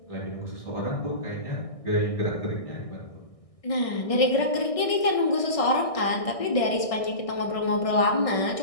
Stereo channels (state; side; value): late; right; 1.6 ms